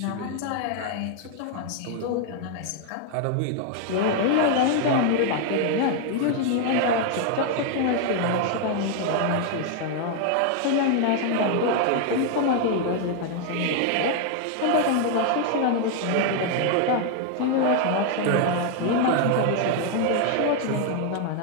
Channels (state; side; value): different; both; correlation 0.00